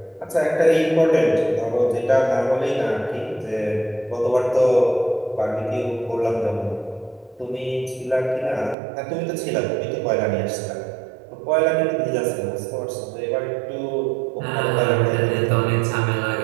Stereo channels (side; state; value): left; drops out; at 8.8 s